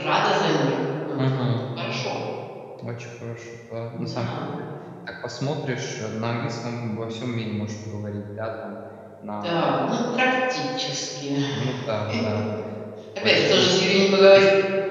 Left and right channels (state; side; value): identical; both; correlation 1.00